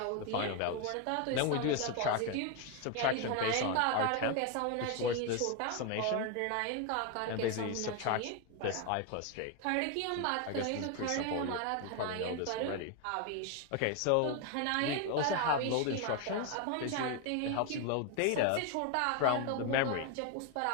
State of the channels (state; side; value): different; both; correlation 0.01